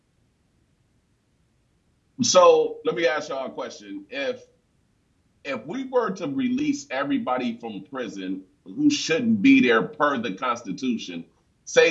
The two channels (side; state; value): both; identical; correlation 1.00